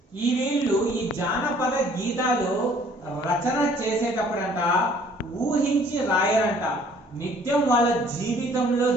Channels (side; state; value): both; normal; correlation 0.57